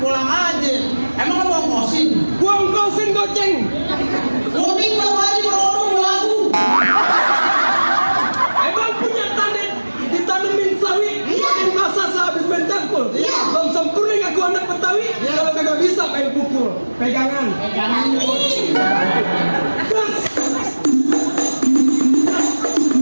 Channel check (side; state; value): both; inverted; correlation -1.00